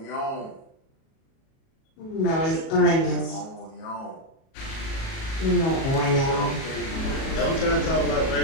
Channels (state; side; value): late; right; 37 ms